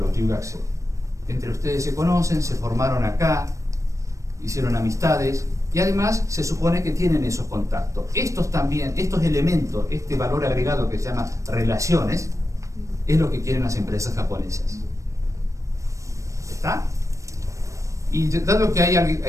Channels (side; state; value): left; late; 0.15 ms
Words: Ryugaku. Entre ustedes se conocen, se formaron acá, hicieron amistades y además se supone que tienen esos contactos. Estos elementos, este valor agregado que se llama relaciones, es lo que quieren las empresas japonesas. ¿Está? Y dado que